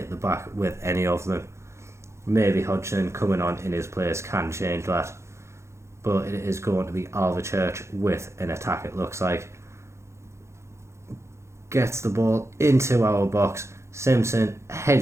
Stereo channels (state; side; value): late; left; 0.13 ms